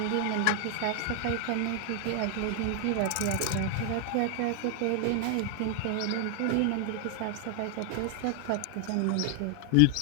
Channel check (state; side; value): different; both; correlation 0.00